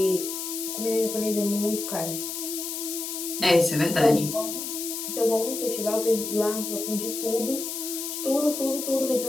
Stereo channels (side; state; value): left; noise; hiss, 5 dB below the sound